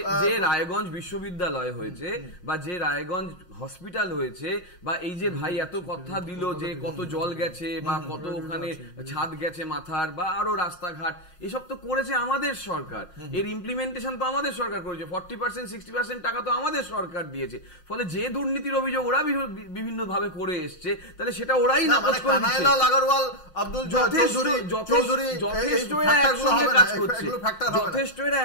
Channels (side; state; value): right; late; 5.6 ms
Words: যে রায়গঞ্জ বিশ্ববিদ্যালয় হয়েছে বা যে রায়গঞ্জ হসপিটাল হয়েছে, বা এই যে ভাই এত কথা দিল যে কত জল গেছে বা কত ওখানে ছাদ গেছে মাথার, বা আরো রাস্তাঘাট, এসব তো করেছে আমাদের সরকার, এর ইমপ্লিমেন্টেশন তো আমাদের সরকার করেছে, 40% 60% টাকা তো আমাদের সরকার দিয়েছে। ফলে যে দুর্নীতির অভিযোগ ওরা বিভিন্ন ভাবে করে এসছে, তাহলে সেটা ওরাই নাকচ করে দিচ্ছে। যথেষ্ট এরা